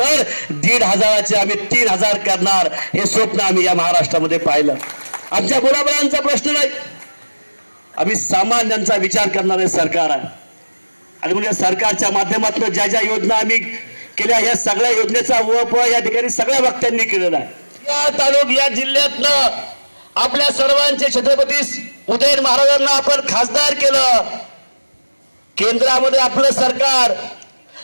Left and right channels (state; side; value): inverted; both; correlation -1.00